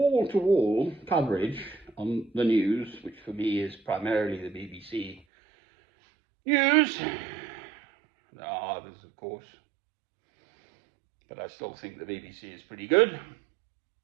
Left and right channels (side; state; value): left; drops out; at 5.2 s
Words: coverage on the news, which for me is primarily the BBC News. There are others, of course, but I still think the BBC is pretty good.